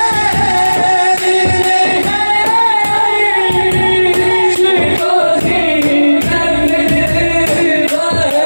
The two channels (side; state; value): both; inverted; correlation -1.00